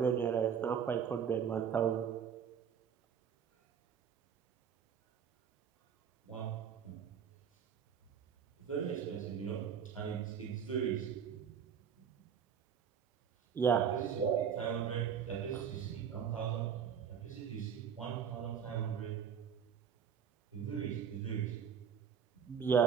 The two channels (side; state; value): left; quieter; 7.7 dB